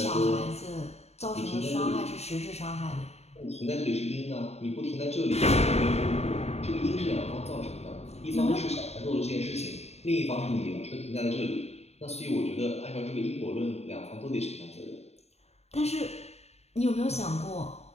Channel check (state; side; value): late; right; 0.31 ms